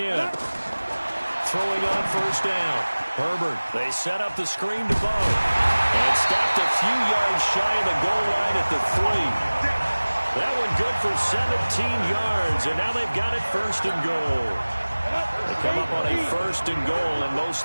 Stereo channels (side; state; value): both; inverted; correlation -1.00